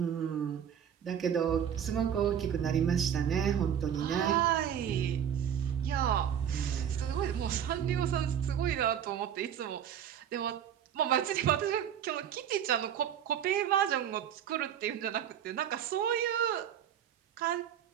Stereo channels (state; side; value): quieter; left; 9.2 dB